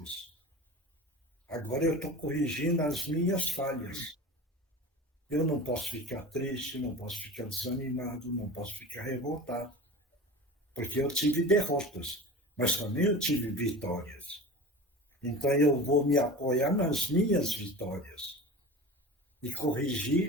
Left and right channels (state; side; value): normal; both; correlation 0.33